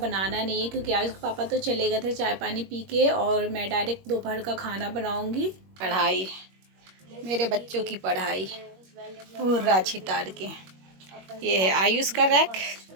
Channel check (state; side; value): late; left; 21 ms